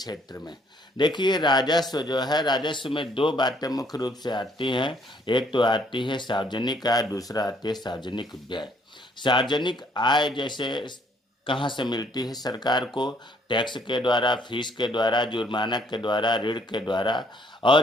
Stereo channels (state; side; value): normal; both; correlation 0.65